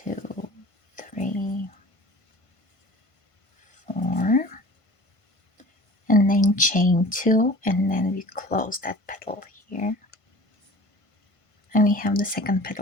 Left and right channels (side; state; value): right; late; 1.5 ms